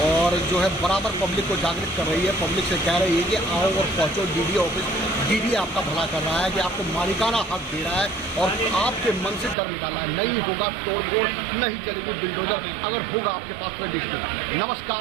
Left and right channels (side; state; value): left; drops out; at 9.6 s